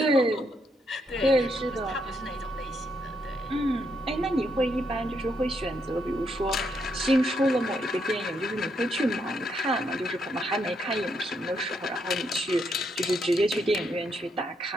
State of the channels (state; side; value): normal; both; correlation 0.77